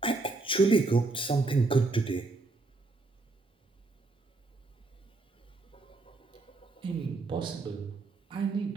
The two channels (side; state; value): left; quieter; 3.5 dB